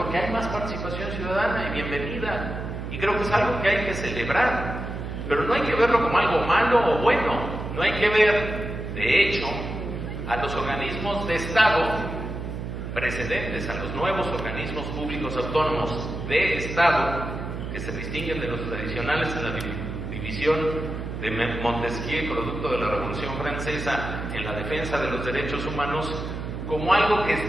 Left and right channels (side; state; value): right; noise; hum, 6 dB below the sound